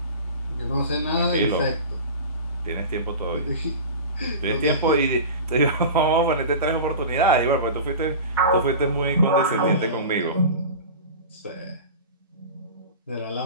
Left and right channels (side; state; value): both; inverted; correlation -0.33